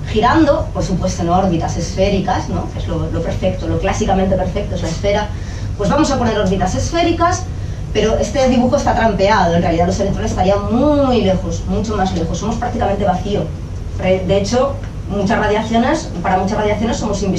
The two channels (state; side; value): identical; both; correlation 1.00